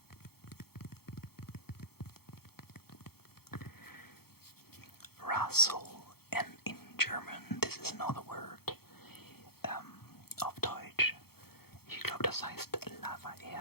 Rassel, and in German this is another word auf Deutsch. Ich glaube, das heißt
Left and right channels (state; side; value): late; right; 0.95 ms